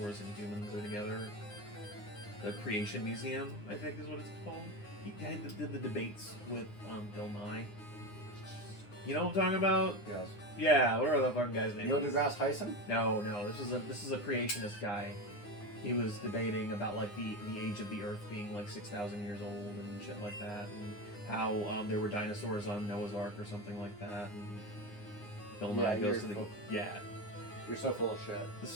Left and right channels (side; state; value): right; late; 9.7 ms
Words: and humans are together. The Creation Museum, I think is what it's called. He did the debates with Bill Nye. You know what I'm talking about? Yes. Yeah, whatever that fucking guy's name Neil is. deGrasse Tyson? No, this is a creationist guy. He was debating about like the age of the Earth being like 6,000 years old and shit like that, and how there were dinosaurs on Noah's Ark or something like that. And Bill Nye goes to the yeah. You're so full of shit.